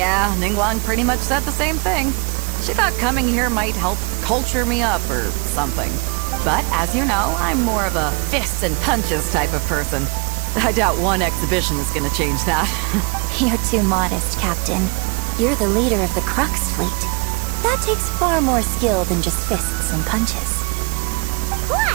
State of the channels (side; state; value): left; quieter; 29.2 dB